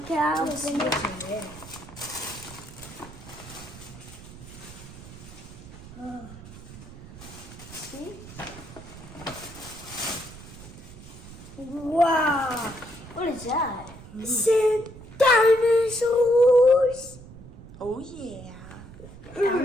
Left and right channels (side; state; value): right; noise; rumble, 16 dB below the sound